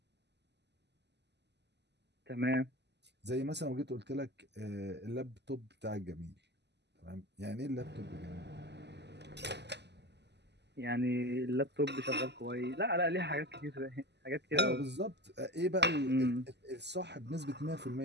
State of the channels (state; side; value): late; left; 0.50 ms